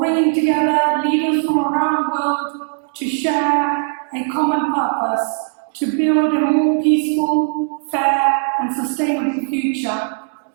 together leaders from around the world to share a common purpose, to build a more peaceful, fair and sustainable future.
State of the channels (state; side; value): silent; left; digital silence